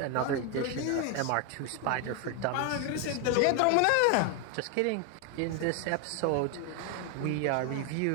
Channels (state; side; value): different; both; correlation 0.01